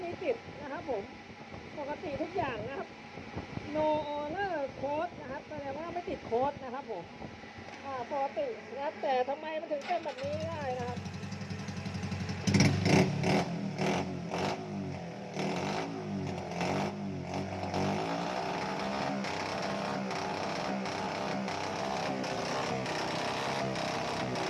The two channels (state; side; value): identical; both; correlation 1.00